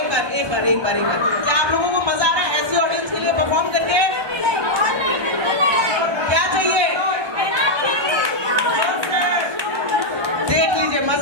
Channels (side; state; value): left; late; 1.2 ms